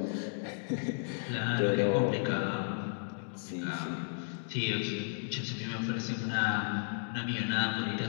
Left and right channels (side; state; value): right; silent; digital silence